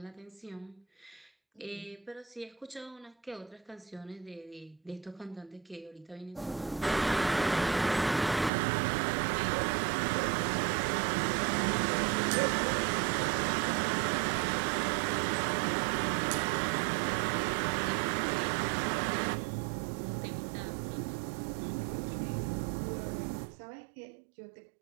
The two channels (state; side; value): drops out; left; at 8.5 s